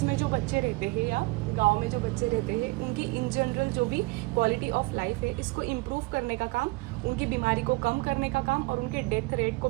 में जो बच्चे रहते हैं या गांव में जो बच्चे रहते हैं, उनकी इन जनरल जो भी क्वालिटी ऑफ लाइफ है इसको इम्प्रूव करने का काम, उनकी बीमारी को कम करने का काम और उनके डेथ रेट को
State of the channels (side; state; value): left; quieter; 23.7 dB